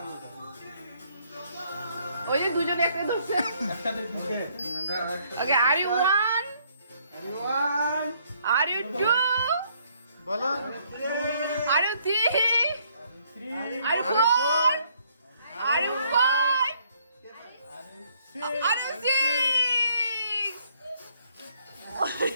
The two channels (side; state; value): both; inverted; correlation -0.67